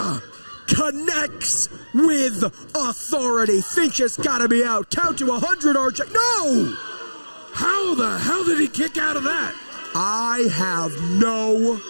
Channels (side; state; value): both; inverted; correlation -1.00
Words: Connects with authority. Finch has got to be out. Count to 100, RJ. No! How the hell did he kick out of that? I have no